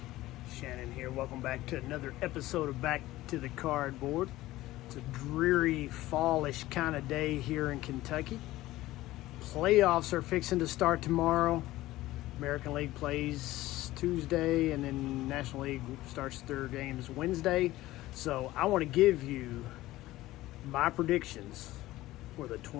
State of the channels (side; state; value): right; quieter; 16.8 dB